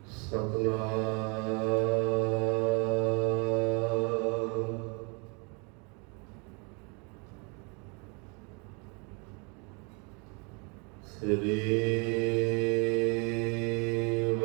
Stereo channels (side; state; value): left; quieter; 32.6 dB